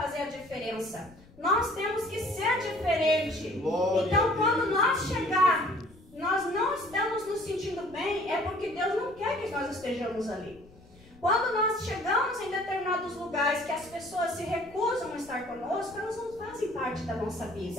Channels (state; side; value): noise; left; rumble, 24 dB below the sound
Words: a diferença. Nós temos que ser diferente. Então, quando nós chegar, nós não estamos nos sentindo bem, é porque Deus não quer que nós estejamos ali. Quando nós chegamos em determinados lugares que as pessoas se recusam a estar conosco, elas não fazem parte da nossa